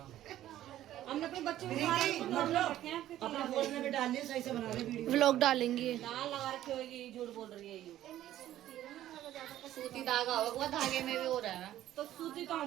हमने अपने बच्चे को अपना फोन में भी डाल दिए, सही से बना रहे वीडियो। व्लॉग डालेंगे। लाल लगा रखी होगी, झूठ बोल रही है ये। सूती धागा होगा बुआ, धागे में भी हो रहा है। तो सूती तो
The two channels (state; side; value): quieter; left; 13.1 dB